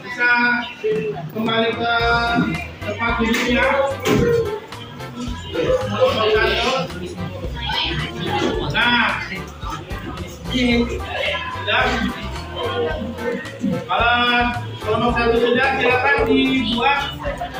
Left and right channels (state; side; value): identical; both; correlation 1.00